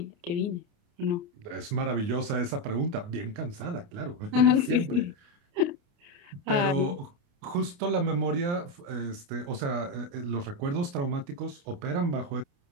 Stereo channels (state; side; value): late; left; 29 ms